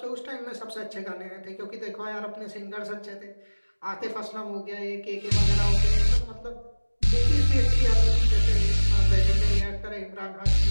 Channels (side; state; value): both; inverted; correlation -1.00